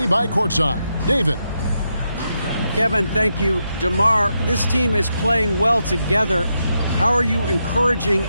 by courtside. David. Kevin, thank you. DeMar, this team is playing well together. How are you encouraging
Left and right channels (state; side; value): inverted; both; correlation -0.84